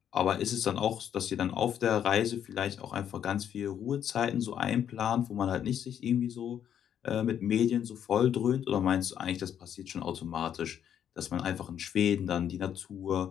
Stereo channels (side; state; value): right; quieter; 9.4 dB